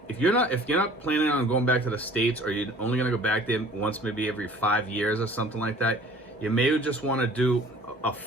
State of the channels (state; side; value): normal; both; correlation 0.49